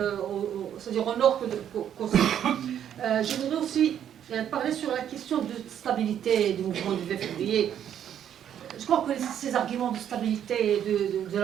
c'est-à-dire au nord qu'au sud. Je voudrais aussi parler sur la question de stabilité du mouvement du 2 février. Je crois que ces arguments de stabilité et de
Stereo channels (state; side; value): quieter; left; 9.7 dB